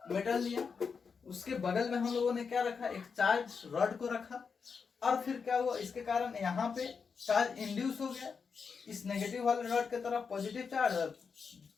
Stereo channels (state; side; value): quieter; right; 5.7 dB